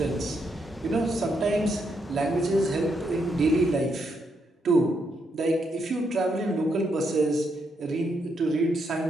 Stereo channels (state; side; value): normal; both; correlation 0.78